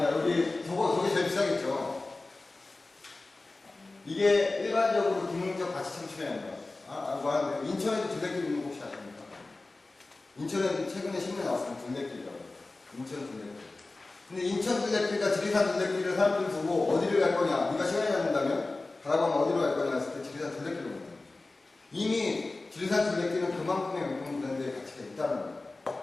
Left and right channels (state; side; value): quieter; right; 3.3 dB